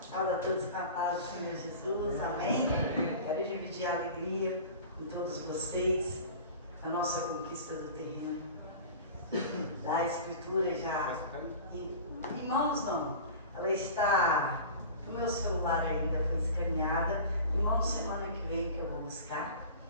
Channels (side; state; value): both; inverted; correlation -0.37